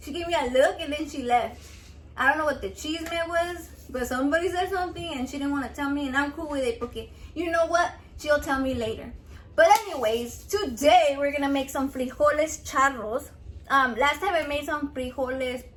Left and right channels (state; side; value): identical; both; correlation 1.00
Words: she gave me a look, and then she left. I don't know what the cheese meant was, but somebody said something and she didn't want to tell me, and I'm cool with it because you know what? She'll tell me later. But anyways, today we're gonna make some frijoles charros. Last time I made some frijoles